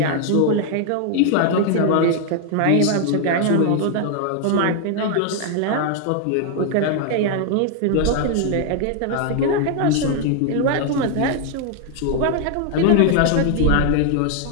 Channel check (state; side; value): different; both; correlation 0.00